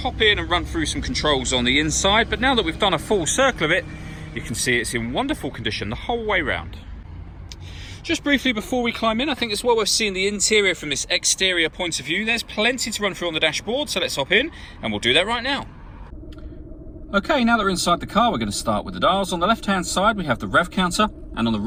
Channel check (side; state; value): both; identical; correlation 1.00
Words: in and run through some controls on the inside. But now that we've done a full circle of it, you can see it's in wonderful condition the whole way round. Just briefly before we climb in, I think it's well worth seeing the interior from this exterior point of view. There's plenty to run through on the dashboard, so let's hop in and we'll do that right now. Okay, now that we're inside the car, we're going to start with the dials. On the left hand side we have the rev counter, and on the